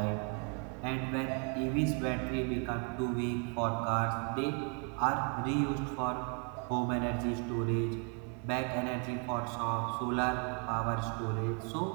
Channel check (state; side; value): quieter; left; 37.0 dB